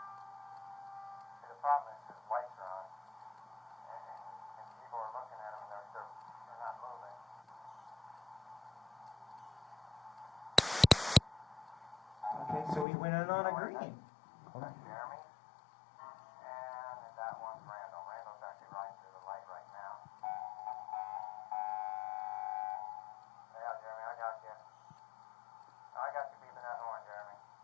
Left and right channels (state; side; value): drops out; right; at 12.9 s